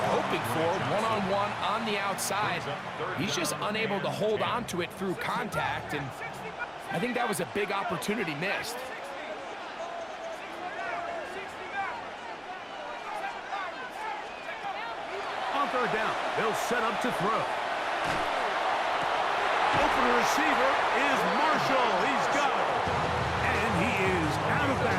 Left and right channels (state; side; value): identical; both; correlation 1.00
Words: hoping for, one-on-one on the outside. He's just unable to hold on to it through contact, and I think that was a big opportunity missed. On third down, they'll set up to throw. Open receiver is Marshall. He's got it. And he is out of